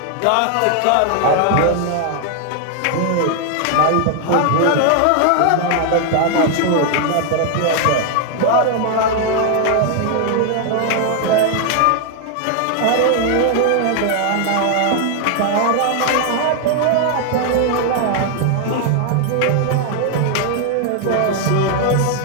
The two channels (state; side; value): different; both; correlation 0.00